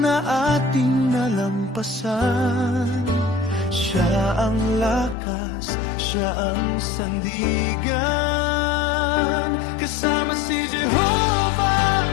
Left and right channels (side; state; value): right; drops out; at 5.2 s